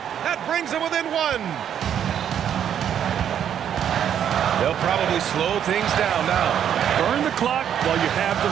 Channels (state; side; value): quieter; left; 9.2 dB